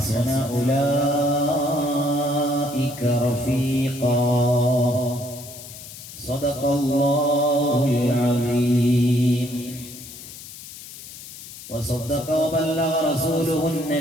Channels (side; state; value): left; noise; hiss, 14 dB below the sound